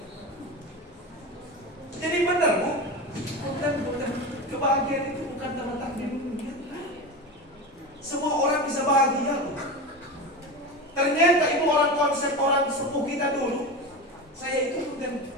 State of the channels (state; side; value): normal; both; correlation 0.24